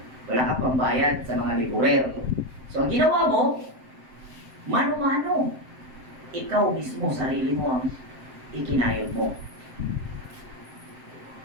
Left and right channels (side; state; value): left; late; 7.7 ms